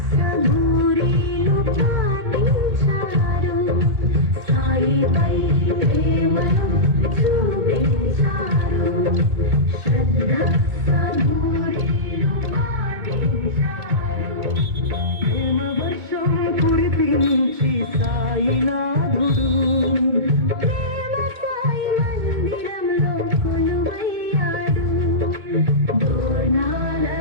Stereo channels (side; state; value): left; late; 2.3 ms